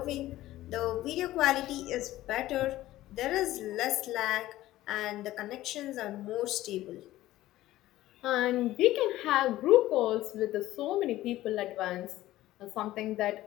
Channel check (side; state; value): right; quieter; 15.5 dB